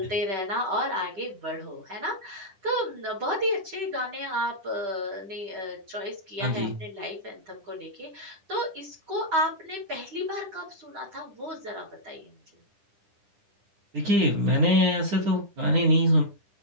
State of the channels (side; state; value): left; late; 10 ms